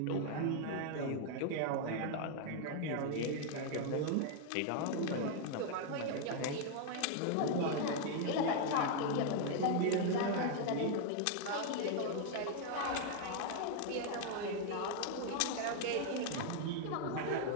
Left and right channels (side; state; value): both; different; correlation 0.00